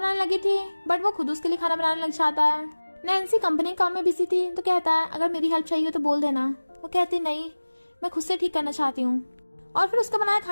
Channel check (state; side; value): inverted; both; correlation -1.00